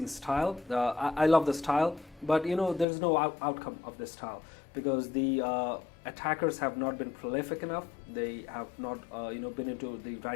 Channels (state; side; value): drops out; right; at 2.9 s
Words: style, I love the style, but there's no outcome of this style because the attackers have not been prolific enough. They have not been into the